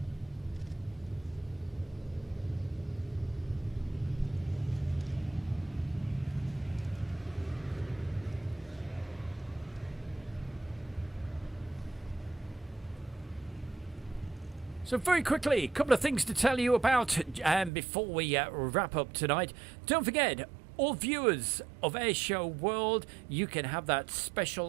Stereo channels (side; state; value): left; drops out; at 17.7 s